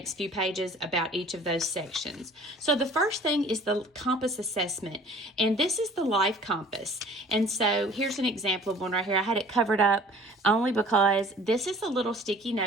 few pages about each of those sections. So the first thing is the compass assessment, and this is the life compass. And so here's an example of one right here. I had it covered up only because this is a little sticky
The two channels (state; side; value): normal; both; correlation 0.50